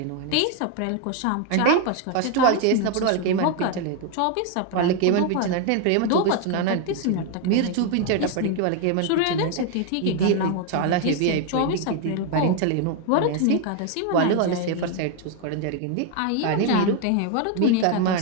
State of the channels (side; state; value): both; different; correlation 0.01